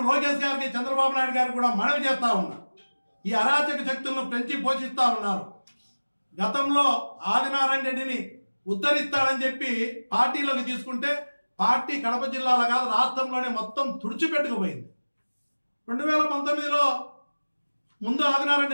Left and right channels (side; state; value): both; inverted; correlation -1.00